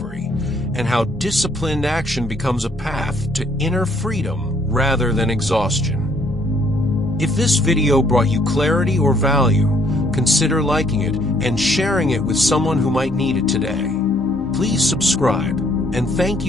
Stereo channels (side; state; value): both; normal; correlation 0.65